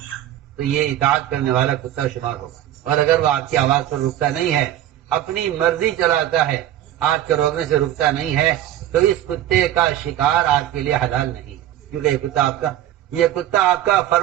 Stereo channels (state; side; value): quieter; left; 12.4 dB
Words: تو یہ اطاعت کرنے والا کتا شمار ہوگا، اور اگر وہ آپ کی آواز پر رکتا نہیں ہے، اپنی مرضی چلاتا ہے، آپ کے روکنے سے رکتا نہیں ہے، تو اس کتے کا شکار آپ کے لیے حلال نہیں، کیونکہ یہ کتا آپ کا